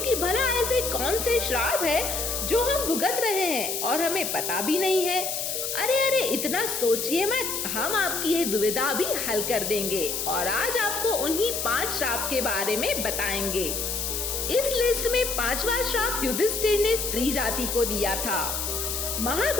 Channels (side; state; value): left; noise; hiss, 2 dB below the sound